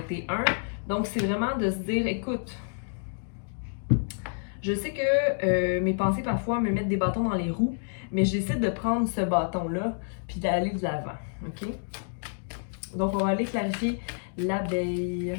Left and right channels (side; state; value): right; silent; digital silence